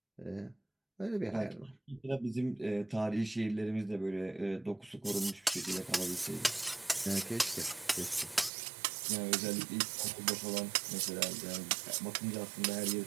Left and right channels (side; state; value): left; drops out; at 8.5 s